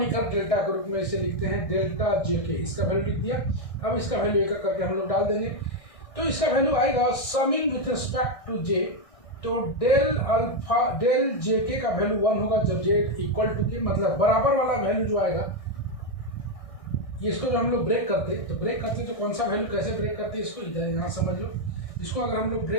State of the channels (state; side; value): late; right; 1.6 ms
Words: डेल्टा के रूप में इसे लिखते हैं डेल्टा JK, इसका वैल्यू लिख दिया। अब इसका वैल्यू एक करके हम लोग डाल देंगे, तो इसका वैल्यू आएगा summing with respect to j, तो डेल अल्फा डेल JK का वैल्यू 1 होगा जब j इक्वल टू k, मतलब बराबर वाला वैल्यू जो आएगा, इसको जो हम लोग ब्रेक करते तो कौन सा वैल्यू कैसे ब्रेक करते इसको इधर यहाँ समझ लो। इसको अगर हम लोग